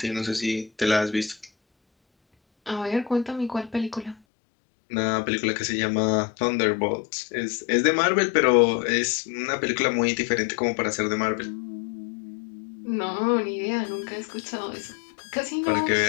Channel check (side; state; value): right; drops out; at 4.2 s